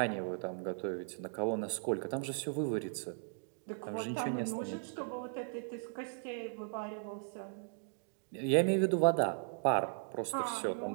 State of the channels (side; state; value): left; silent; digital silence